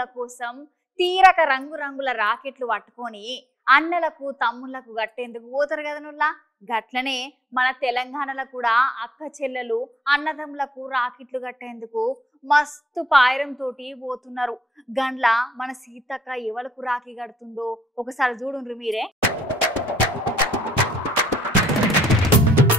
కోసం తీరక రంగురంగుల రాకెట్లు పట్టుకొని అన్నలకు తమ్ముళ్లకు గట్టేందుకు పోతారు కదా నుల్లా. గట్లనే మన తెలంగాణలో కూడా అక్క చెల్లెలు అన్నదమ్ములకు రాకెట్లు కట్టేందుకు మస్తు పాయరం తోటి పోతున్నారు. గండ్ల మన సీతక్క ఎవలకు రాఖీ కడుతుందో ఒకసారి చూడుండ్రు మీరే.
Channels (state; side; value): normal; both; correlation 0.74